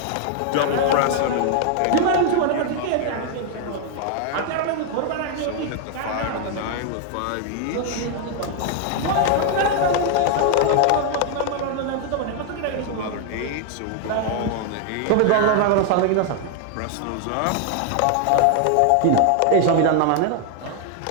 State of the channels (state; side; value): different; both; correlation 0.00